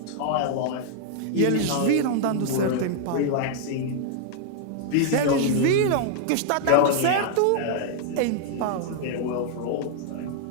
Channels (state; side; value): different; both; correlation 0.00